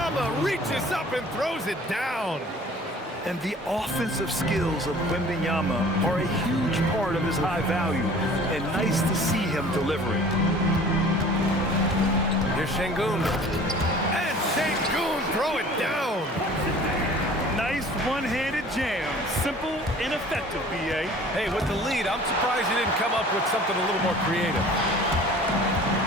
reaches up and throws it down. And the offensive skills of Wembanyama are a huge part of his high value, and nice to see him delivering. Here's Şengün. And Şengün throw it down. Nice one-handed jam. Simple and effective, B.A. Hey, with the lead, I'm surprised he didn't come up with something a little more creative.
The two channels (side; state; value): both; normal; correlation 0.47